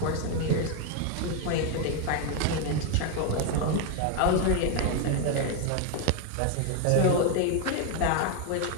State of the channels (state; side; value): different; both; correlation 0.01